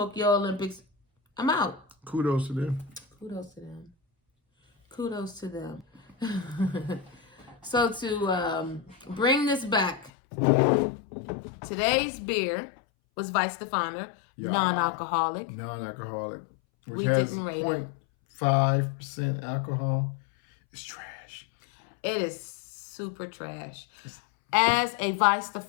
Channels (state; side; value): drops out; right; at 10.1 s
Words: Olympics. I'm out. Kudos to them. Kudos to them. kudos to them. So to bring this back, today's beer was Weistaphaner, Yeah. non-alcoholic. Non-alcoholic, which We has didn't rate it. 0.5% alcohol. It's trash. It is super trash. As a